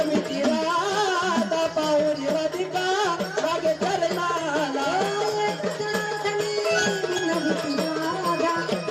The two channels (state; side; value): identical; both; correlation 1.00